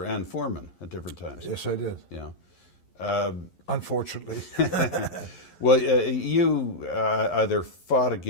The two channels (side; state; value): right; late; 11 ms